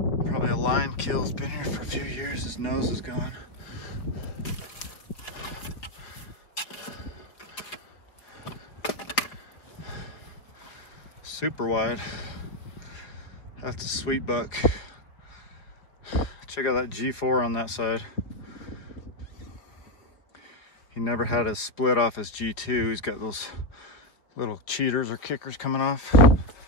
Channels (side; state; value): right; late; 4.5 ms